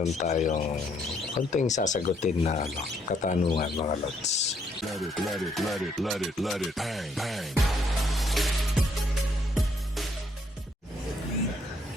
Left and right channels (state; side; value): normal; both; correlation 0.71